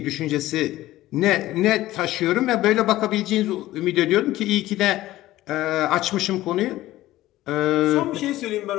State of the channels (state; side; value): quieter; right; 15.9 dB